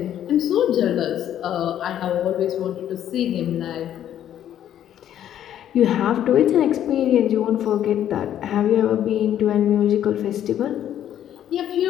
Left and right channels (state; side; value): quieter; right; 10.8 dB